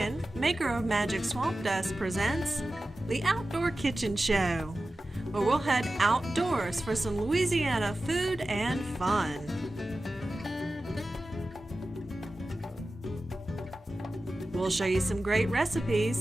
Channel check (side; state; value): both; normal; correlation 0.94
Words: maker of Magic Swamp Dust, presents the Outdoor Kitchen Show, where we'll head outdoors for some Louisiana food and fun. We'll show you some great